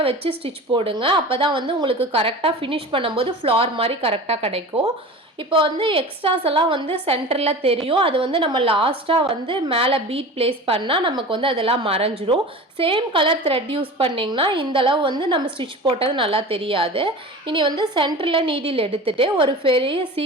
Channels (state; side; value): normal; both; correlation 0.34